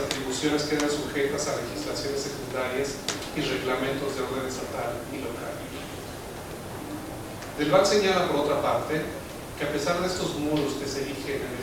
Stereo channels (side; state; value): both; identical; correlation 1.00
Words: quedan sujetas a legislaciones secundarias y reglamentos de orden estatal y local. Del Val señala, por otra parte, que a pesar de estos muros que se erigen en